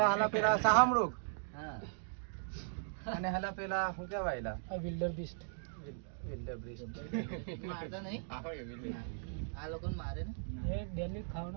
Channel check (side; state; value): left; silent; digital silence